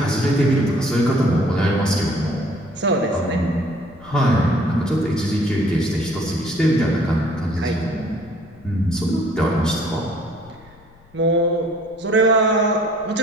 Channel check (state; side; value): noise; left; rumble, 27 dB below the sound